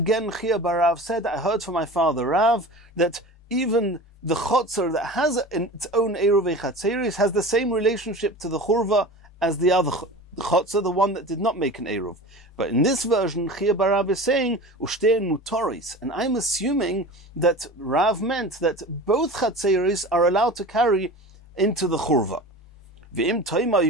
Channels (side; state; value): both; normal; correlation 0.34